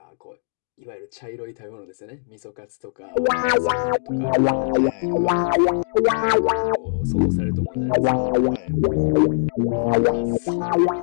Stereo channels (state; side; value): silent; right; digital silence